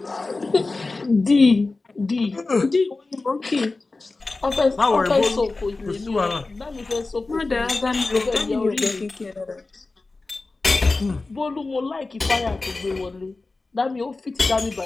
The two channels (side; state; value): right; quieter; 3.5 dB